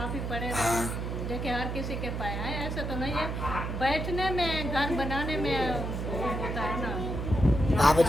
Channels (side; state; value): right; noise; hum, 3 dB below the sound